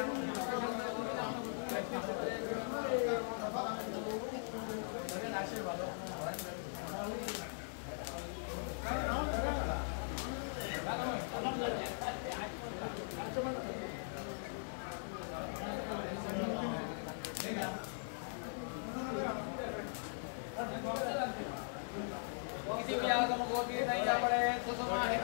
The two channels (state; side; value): silent; right; 51 dB below the other